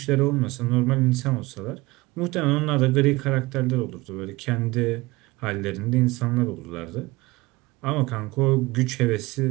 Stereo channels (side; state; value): left; quieter; 21.3 dB